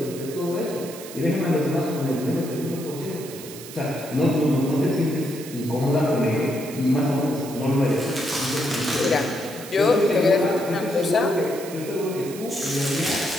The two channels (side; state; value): right; noise; hiss, 14 dB below the sound